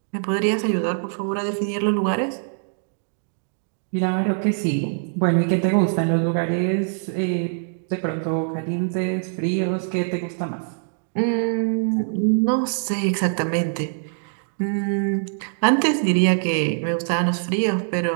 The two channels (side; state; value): left; silent; digital silence